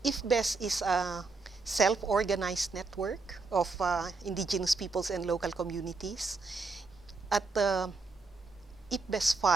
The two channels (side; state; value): left; quieter; 4.0 dB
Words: IFBES is a self-organized network of indigenous peoples and local communities. At the IPBES